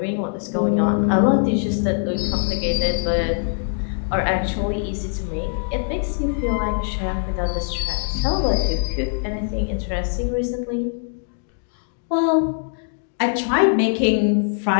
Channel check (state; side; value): silent; right; digital silence